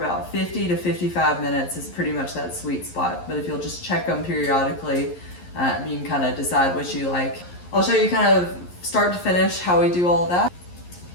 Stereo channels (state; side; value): late; right; 11 ms